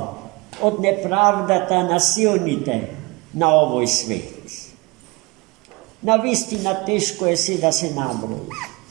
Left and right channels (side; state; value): left; quieter; 25.7 dB